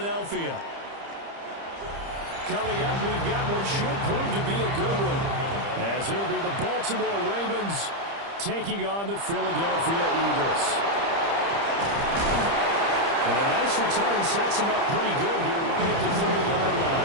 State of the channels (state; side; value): late; left; 30 ms